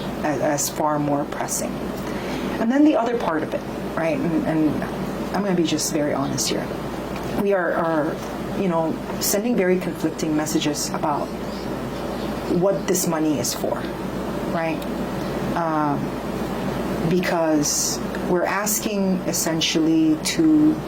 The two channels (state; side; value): identical; both; correlation 1.00